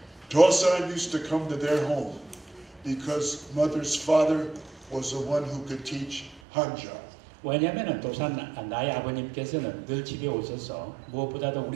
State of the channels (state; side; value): drops out; left; at 6.4 s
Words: Dosan used to come to their home because mother's father was the one who could teach Hanja. 왜냐하면 도산 나의 아버님께서는 늘 집에 오셔서 무엇보다도